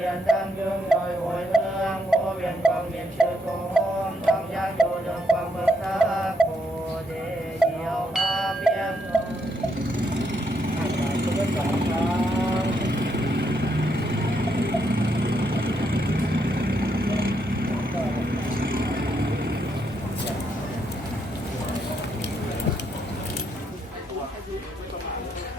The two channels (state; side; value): normal; both; correlation 0.77